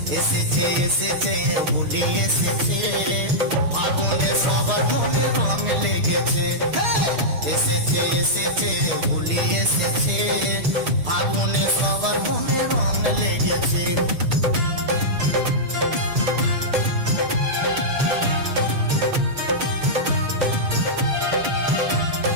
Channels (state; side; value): late; left; 6.6 ms